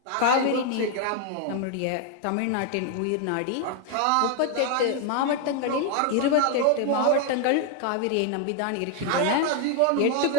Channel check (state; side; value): different; both; correlation 0.01